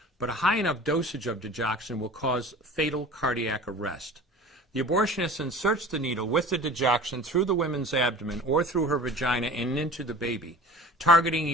but a high enough dosage of digoxin will cause fatal cardiac arrest. The abortionist inserts the needle with the digoxin through the woman's abdomen or through her vagina and into the baby, targeting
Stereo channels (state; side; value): normal; both; correlation 0.41